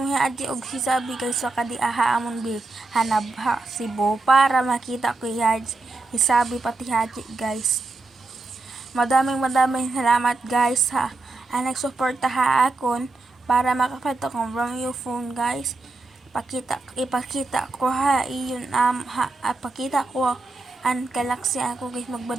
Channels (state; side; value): quieter; left; 3.5 dB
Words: ni Haji og si Sabi guys, pakadiaa amon bi hanabha si Bo para makita ko si Haji, si Sabi pati Haji guys. Madaming salamat guys ha ang nagsuporta ha akon para makapata kong from your phone guys. Ipakita ko ha iyon pakita ko ang galaxy ako guys,